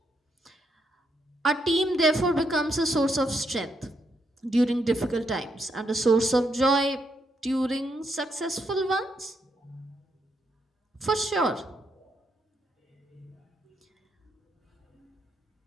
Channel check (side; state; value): both; normal; correlation 0.78